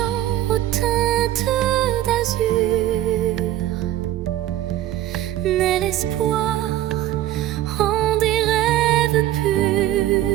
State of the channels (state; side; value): quieter; left; 13.6 dB